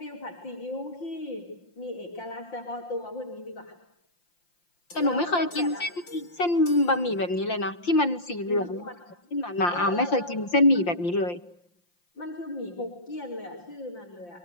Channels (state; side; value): late; right; 5.8 ms